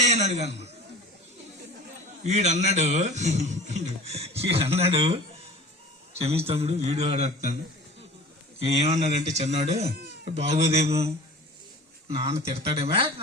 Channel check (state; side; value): normal; both; correlation 0.40